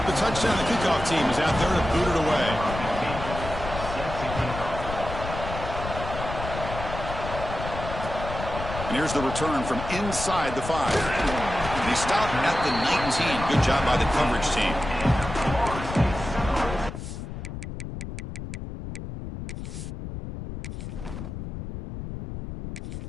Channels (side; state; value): left; noise; rumble, 8 dB below the sound